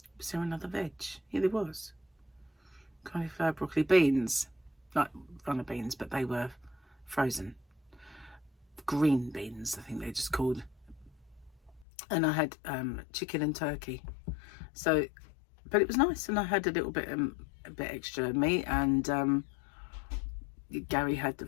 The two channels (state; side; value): drops out; right; at 11.9 s